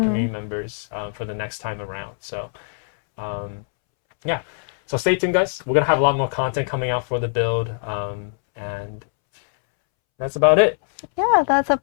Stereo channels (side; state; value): right; silent; 64 dB below the other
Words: members for the next time around. So, yeah. So stay tuned, guys. We're going to have a lot more content coming out for the build. And that's about it. Yeah, that's